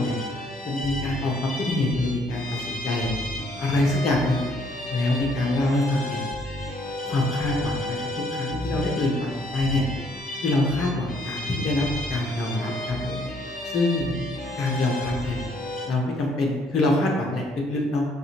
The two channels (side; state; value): both; normal; correlation 0.66